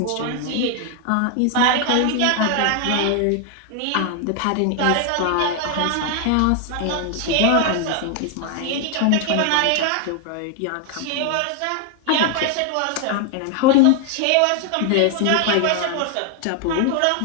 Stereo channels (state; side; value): different; both; correlation 0.00